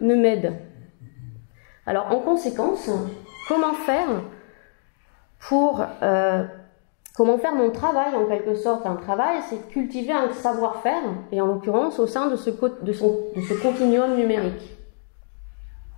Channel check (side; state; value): right; silent; digital silence